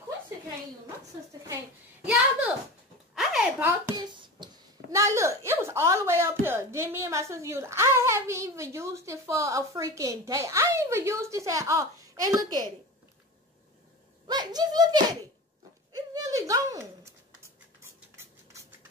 Quincy can't use. My sister can't. Y'all, look. I had bought this. Now, look. It was all the way up here. Then me and my sister used it. I haven't even used it for a freaking day. I ain't even used this at all. And look at it. Like, just look at it. It's really gone.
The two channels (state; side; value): normal; both; correlation 0.31